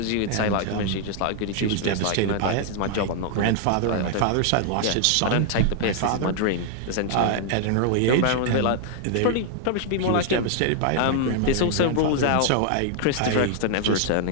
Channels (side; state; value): both; different; correlation 0.00